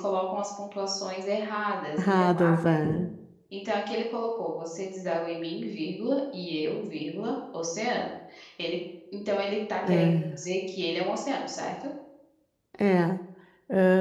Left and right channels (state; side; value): identical; both; correlation 1.00